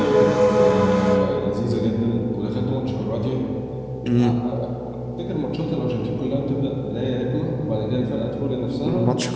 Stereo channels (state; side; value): identical; both; correlation 1.00